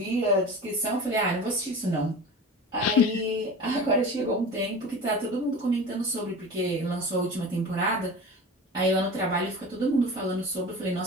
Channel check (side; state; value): both; normal; correlation 0.34